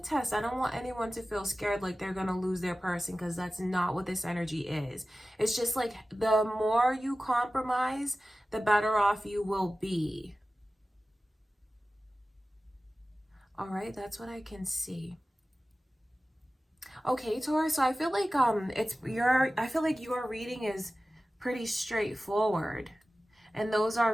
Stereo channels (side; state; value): both; normal; correlation 0.95